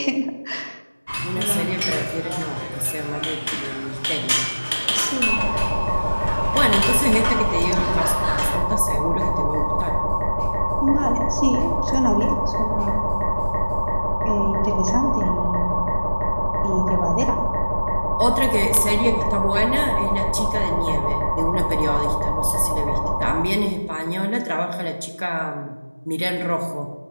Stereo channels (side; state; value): both; inverted; correlation -1.00